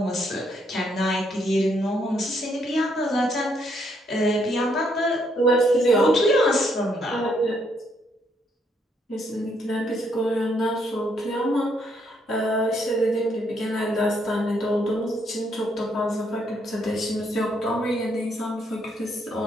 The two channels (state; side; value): normal; both; correlation 0.73